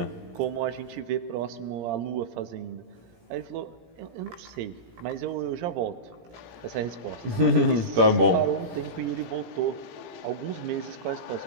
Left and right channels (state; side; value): late; left; 17 ms